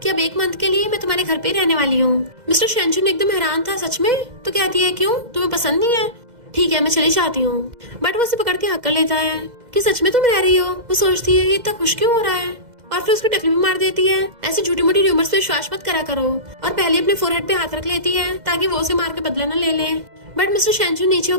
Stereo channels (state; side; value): late; left; 2.0 ms